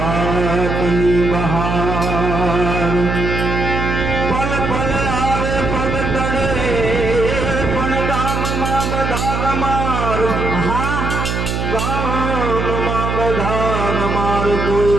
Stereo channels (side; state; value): right; noise; hum, 2 dB below the sound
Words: બહાર, પલ પલ આવે પગ તળે પણ ગામમાં બધા ગમાર. ગામમાં બધા ગમાર, કોઈ